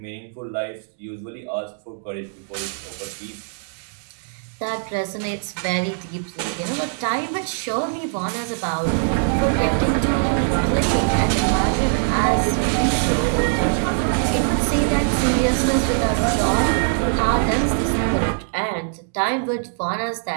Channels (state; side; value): silent; left; digital silence